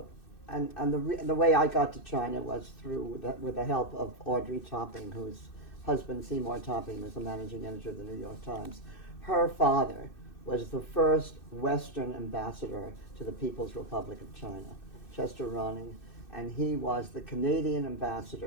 and the way I got to China was with the help of Audrey Topping, whose husband Seymour Topping was the managing editor of the New York Times. Her father was the first Western ambassador to the People's Republic of China, Chester Ronning, and he was the Canadian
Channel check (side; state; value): right; late; 2.6 ms